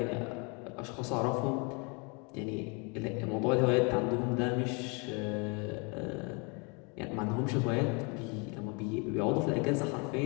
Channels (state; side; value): quieter; right; 32.5 dB